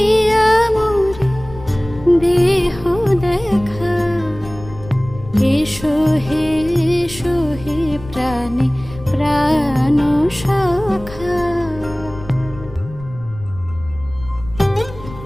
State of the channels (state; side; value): noise; left; rumble, 16 dB below the sound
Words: মোরে দেহ দেখা। এসো হে